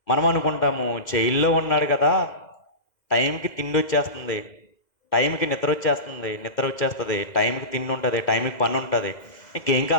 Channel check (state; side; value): late; right; 2.0 ms